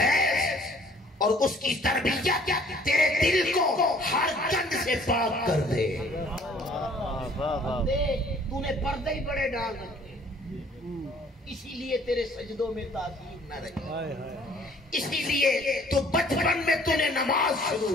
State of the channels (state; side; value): normal; both; correlation 0.57